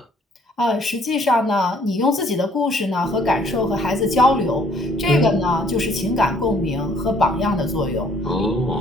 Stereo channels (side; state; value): both; normal; correlation 0.62